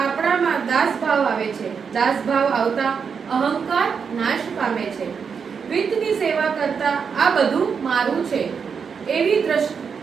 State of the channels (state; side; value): quieter; left; 6.2 dB